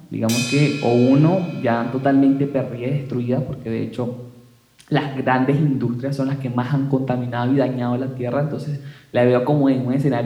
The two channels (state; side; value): identical; both; correlation 1.00